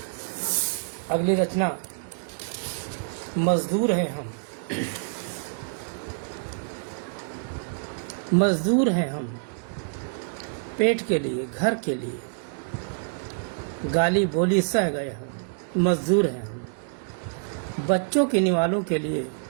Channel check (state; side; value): silent; left; digital silence